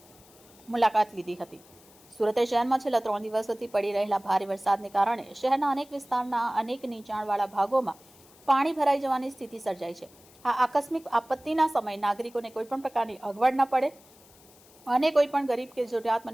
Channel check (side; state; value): left; noise; hiss, 26 dB below the sound